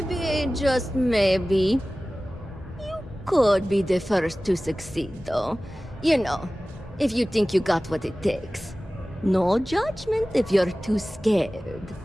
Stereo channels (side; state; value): both; normal; correlation 0.97